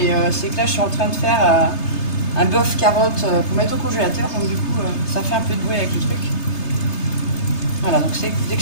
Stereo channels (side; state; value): right; late; 3.3 ms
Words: c'est que là je suis en train de faire un bœuf carotte pour mettre au congélateur, donc du coup ça fait un peu de bruit avec le truc. Voilà, donc dès que